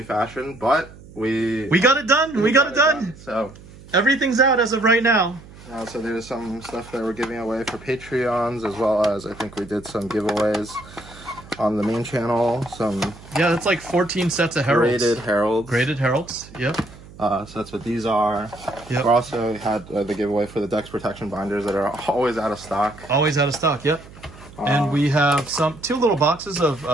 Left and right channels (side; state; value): right; noise; hum, 20 dB below the sound